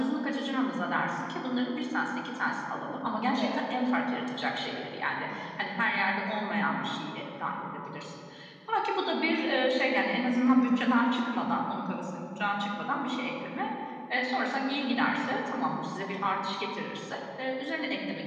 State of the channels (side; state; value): both; identical; correlation 1.00